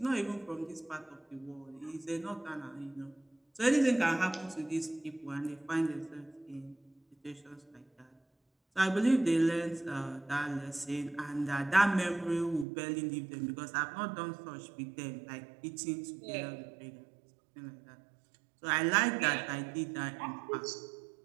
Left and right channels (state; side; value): drops out; left; at 12.7 s